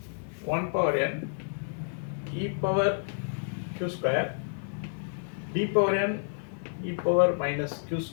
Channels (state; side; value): silent; right; digital silence